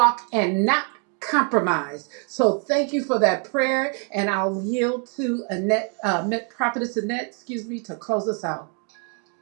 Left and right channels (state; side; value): quieter; left; 38.6 dB